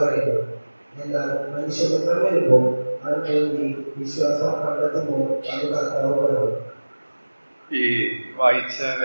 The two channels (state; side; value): inverted; both; correlation -1.00